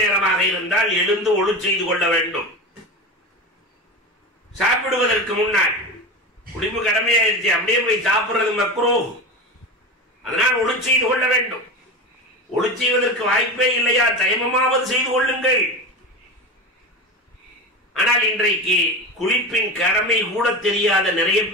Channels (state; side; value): normal; both; correlation 0.25